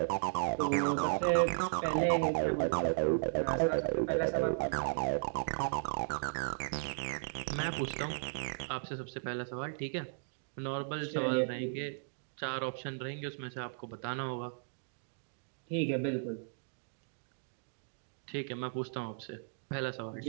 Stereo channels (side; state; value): left; silent; digital silence